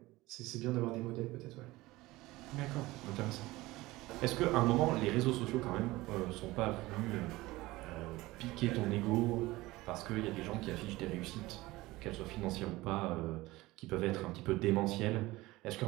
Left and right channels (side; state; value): left; quieter; 19.3 dB